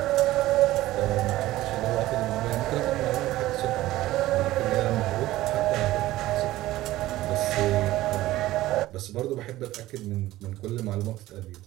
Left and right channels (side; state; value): left; quieter; 16.1 dB